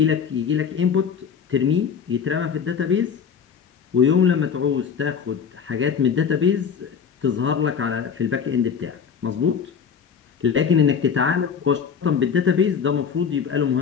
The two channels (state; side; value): quieter; right; 7.0 dB